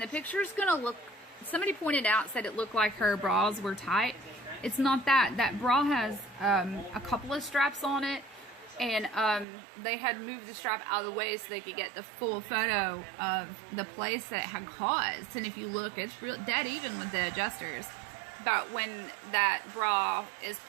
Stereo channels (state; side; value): drops out; left; at 9.5 s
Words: the picture's gonna look, somebody pointed out, said it looked like her bras were tight. It's not that. That bra has a couple of straps on it. And they had moved the strap out of the way so they could get the full photo of the place that it had caused. And if you look, it's real dead even with the adjusters. But when that bra is